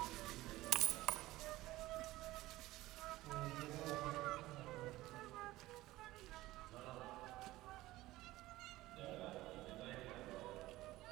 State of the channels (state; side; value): quieter; left; 17.5 dB